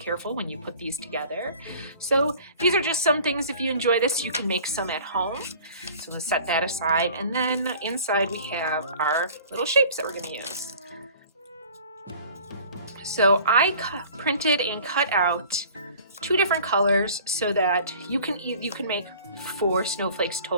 when you put these together. So these are just some things, if you enjoy this, you can make some at home. So let's set that aside. And then inside we have our little shapes that we're going to use. So I printed and cut out two different colors so that you can make 4 snowflakes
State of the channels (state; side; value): inverted; both; correlation -0.47